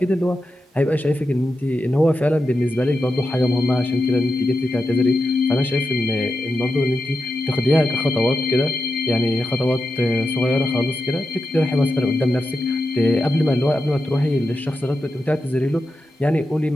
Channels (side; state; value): both; normal; correlation 0.89